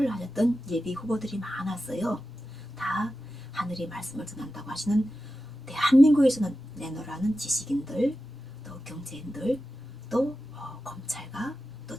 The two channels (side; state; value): both; normal; correlation 0.92